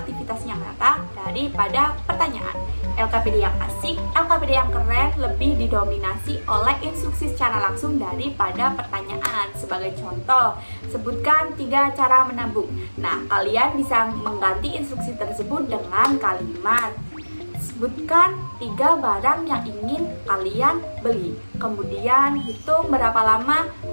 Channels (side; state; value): both; inverted; correlation -1.00